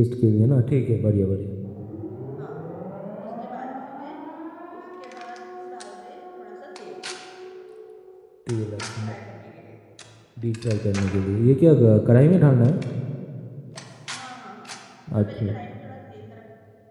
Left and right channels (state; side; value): identical; both; correlation 1.00